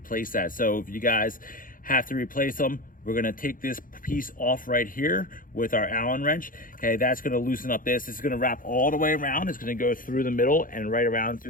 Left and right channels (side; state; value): right; late; 0.40 ms